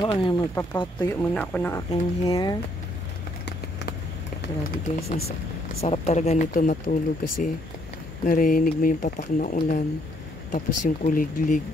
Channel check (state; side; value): normal; both; correlation 0.69